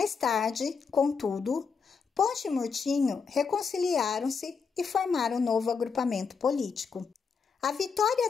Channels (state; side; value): quieter; right; 5.5 dB